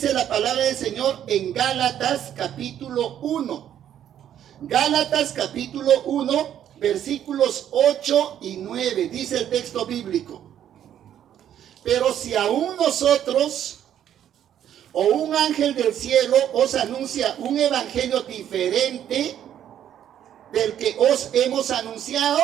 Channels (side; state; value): left; quieter; 10.3 dB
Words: la palabra del Señor en Gálatas capítulo 1. Gálatas capítulo 1, versículos 8 y 9. Dice el texto bíblico: pero si aún nosotros o un ángel del cielo os anuncia un evangelio diferente del que os hemos anunciado,